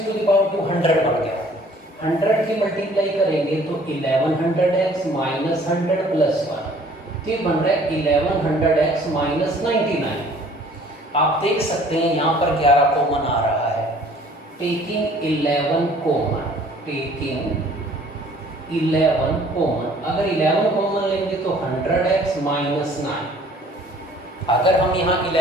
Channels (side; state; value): both; normal; correlation 0.54